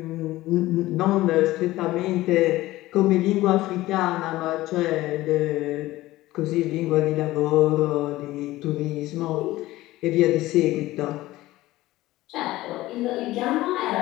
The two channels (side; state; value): right; quieter; 17.2 dB